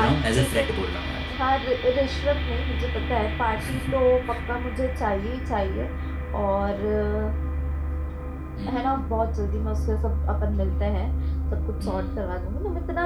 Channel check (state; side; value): identical; both; correlation 1.00